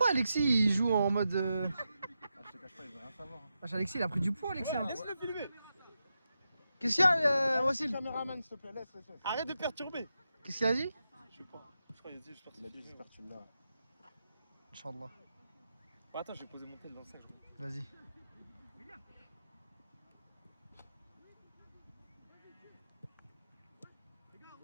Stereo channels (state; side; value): inverted; both; correlation -0.87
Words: Alexis il joue en mode. Ah, je te cache pas, il veut rien savoir. Wesh, Alexis il a pris du poids, Alexis. Hein. Laisse-le filmer. Qu'est-ce qu'il y a, Wassil? Caméraman, s'il te plaît, laisse. Arrête de perturber. Qu'est-ce qu'il a dit? Je sais pas. Je crois qu'il a dit, j'espère que Il a c'est dit, filmé. j'espère que tu l'as. Inch'Allah. Bah, attends, je vais poser mon tel dans le sac. Vas-y.